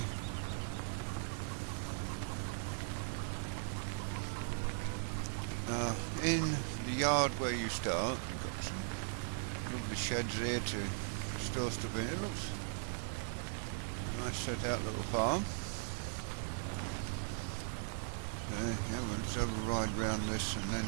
in the yard where you start. You've got some lovely sheds here to store stuff in. It looks a nice set out little farm. So yeah, we'll just have a ride round this and then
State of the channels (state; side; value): silent; left; 52 dB below the other